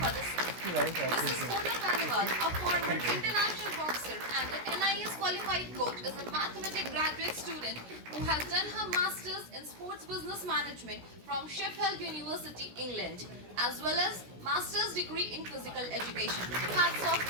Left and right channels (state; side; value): late; left; 16 ms